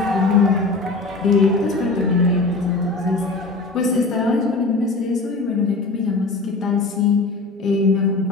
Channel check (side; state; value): right; quieter; 3.4 dB